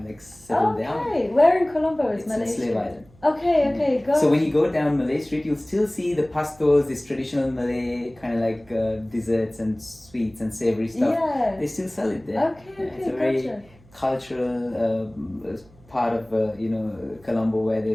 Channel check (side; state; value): right; noise; hum, 27 dB below the sound